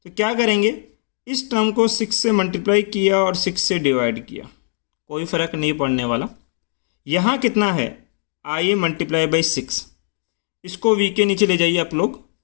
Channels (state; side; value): silent; right; digital silence